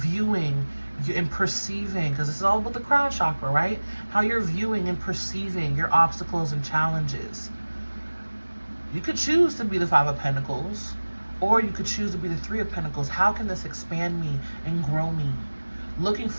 and perceiving, because this is all about the crown chakra, right? How you're viewing and perceiving your obstacles and challenges. You could choose to be the Five of Pentacles, or you could choose to be the Three of Pentacles. How can this expand me and grow me? Looking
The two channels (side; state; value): both; inverted; correlation -1.00